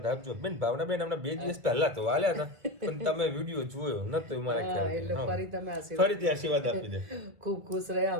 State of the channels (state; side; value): late; left; 2.2 ms